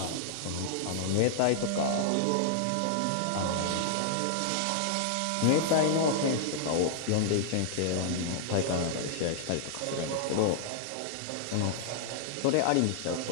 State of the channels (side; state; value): both; different; correlation -0.01